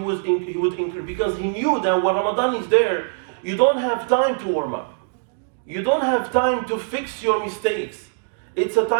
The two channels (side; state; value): left; silent; digital silence